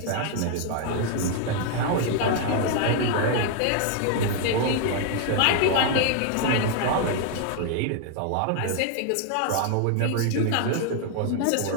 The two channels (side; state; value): both; different; correlation 0.00